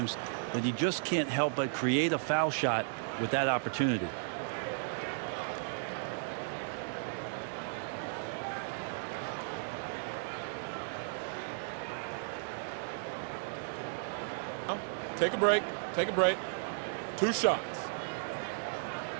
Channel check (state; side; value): silent; left; digital silence